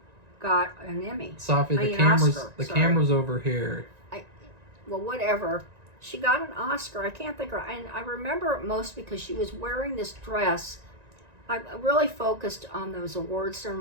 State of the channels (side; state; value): left; late; 1.9 ms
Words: got an Emmy. Safi, the camera's over here. Well, whatever. She got an Oscar. I can't think of her. And I remember it most because she was wearing this dress. I really focused on those award